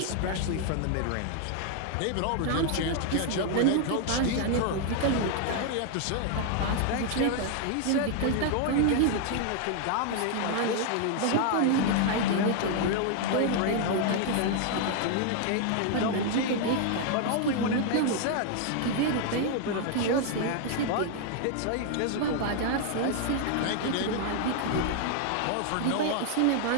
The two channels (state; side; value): different; both; correlation 0.00